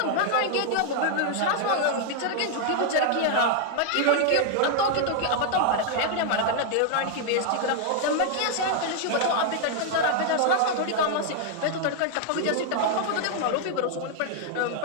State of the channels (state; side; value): different; both; correlation 0.00